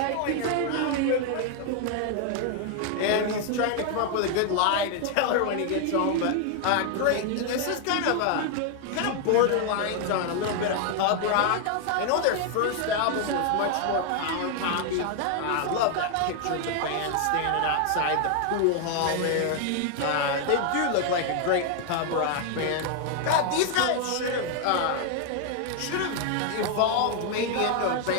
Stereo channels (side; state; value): both; different; correlation 0.00